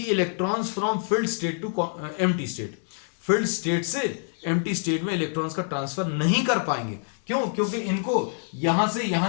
from filled state to empty state. Filled state से एम्प्टी स्टेट में इलेक्ट्रॉन्स का transfer नहीं कर पाएंगे। क्यों, क्योंकि इनको यहां से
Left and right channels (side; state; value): right; silent; digital silence